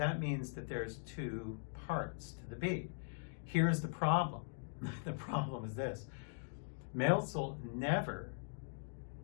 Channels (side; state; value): right; silent; digital silence